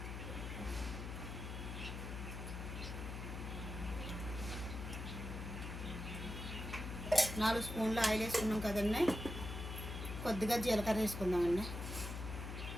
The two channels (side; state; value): left; noise; hum, 6 dB below the sound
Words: నాలుగు స్పూన్లు ఆయిల్ వేసుకున్నాం కదండి, కొద్దిగా జీలకర్ర వేసుకుందామండి.